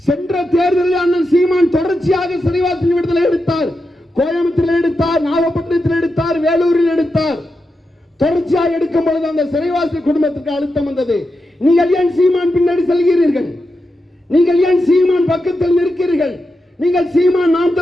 சென்ற தேர்தலில் அண்ணன் சீமான் தொடர்ச்சியாக சிறைவாசி விடுதலை எடுத்தார். கோயம்புத்தூரில் எடுத்தார், நாகப்பட்டினத்தில் எடுத்தார், வேலூரில் எடுத்தார். தொடர்ச்சியாக எடுக்கும் பொழுது அந்த சிறைவாசி குடும்பத்துக்கு அழுத்தம் வந்தது. நீங்கள் ஏன் சீமான் பின்னாடி செல்கிறீர்கள்? நீங்கள் ஏன் சீமான் பக்கத்தில் நிற்கிறீர்கள்? நீங்கள் சீமான் நாம்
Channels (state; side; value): normal; both; correlation 0.88